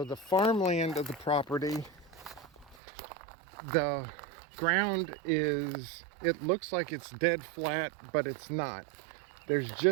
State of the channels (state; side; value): drops out; left; at 2.8 s